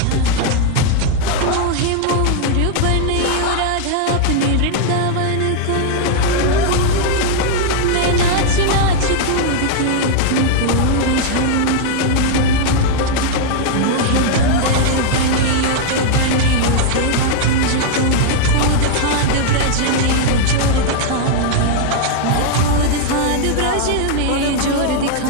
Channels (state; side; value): different; both; correlation -0.01